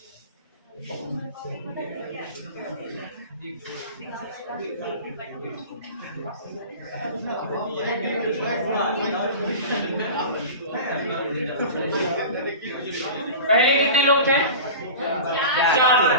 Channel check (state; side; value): inverted; both; correlation -0.34